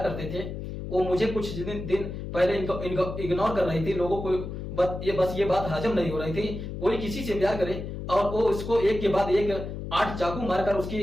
करते थे। वो मुझे कुछ दिन पहले इनको इग्नोर कर रही थी, लोगों को ये बात हजम नहीं हो रही थी। कोई किसी से प्यार करे और वो इसको एक के बाद एक 8 चाकू मारकर उसकी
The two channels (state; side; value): noise; left; hum, 7 dB below the sound